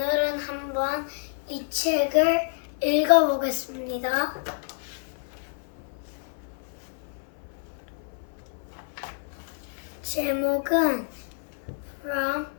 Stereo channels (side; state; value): right; silent; 56 dB below the other